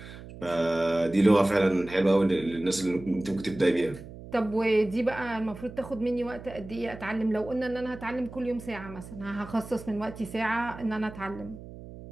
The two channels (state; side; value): noise; right; hum, 15 dB below the sound